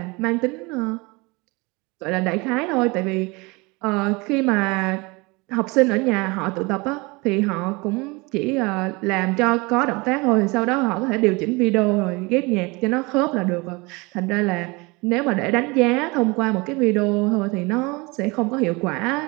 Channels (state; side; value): quieter; left; 25.8 dB